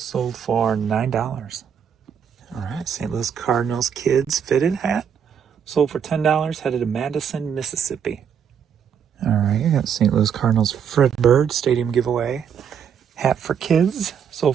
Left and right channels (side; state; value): left; quieter; 7.8 dB